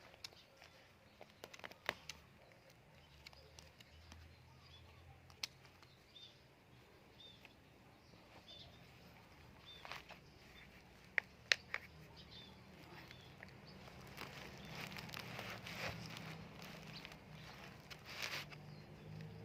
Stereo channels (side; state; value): both; identical; correlation 1.00